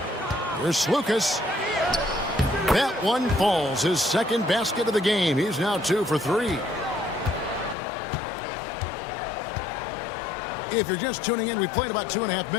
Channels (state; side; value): drops out; right; at 7.8 s